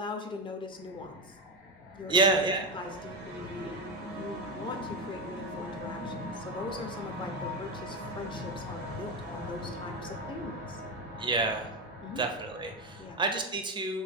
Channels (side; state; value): both; normal; correlation 0.14